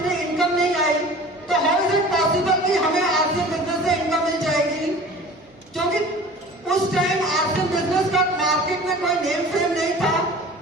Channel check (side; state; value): both; normal; correlation 0.42